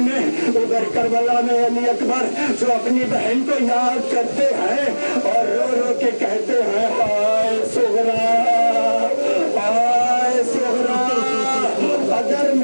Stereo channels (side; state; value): both; inverted; correlation -1.00